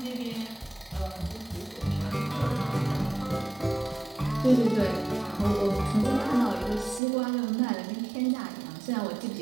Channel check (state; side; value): drops out; left; at 7.0 s